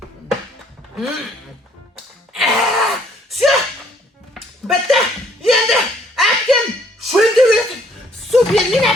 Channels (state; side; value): normal; both; correlation 0.63